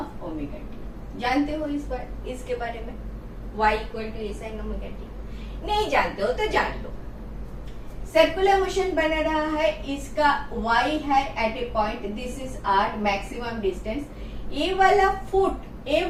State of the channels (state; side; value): identical; both; correlation 1.00